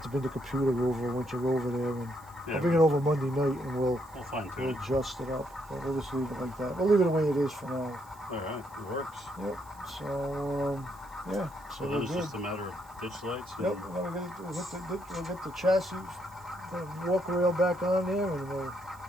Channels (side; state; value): right; noise; hiss, 26 dB below the sound